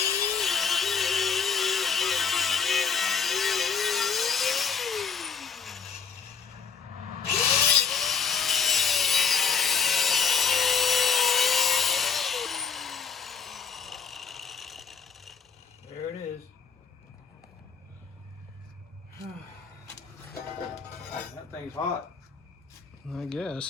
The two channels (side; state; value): right; quieter; 6.1 dB